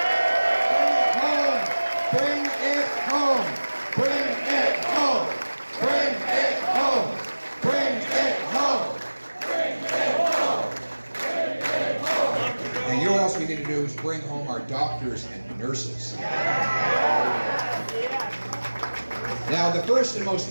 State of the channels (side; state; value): both; inverted; correlation -1.00